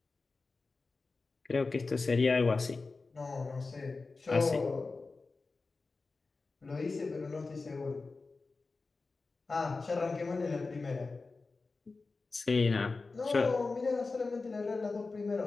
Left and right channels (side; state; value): right; quieter; 3.9 dB